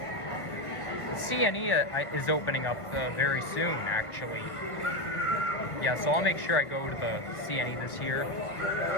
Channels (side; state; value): right; late; 1.7 ms